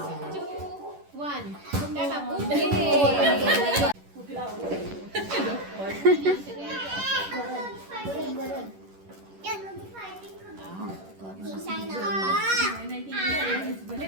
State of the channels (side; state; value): left; late; 11 ms